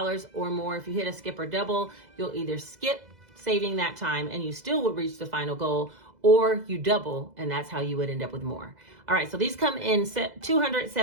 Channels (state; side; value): late; left; 2.0 ms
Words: or more. If you hit a skip or double, you'll either skip saving that time and you still would reach the final goal, or you double and that's how you would end up with more. All right, so these come in